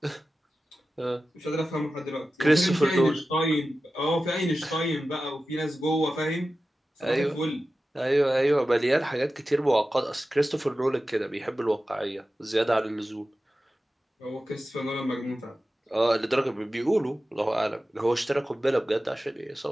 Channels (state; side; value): normal; both; correlation 0.94